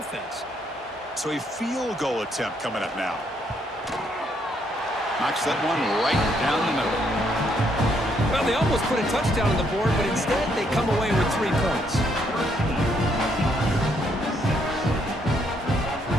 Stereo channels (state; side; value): normal; both; correlation 0.72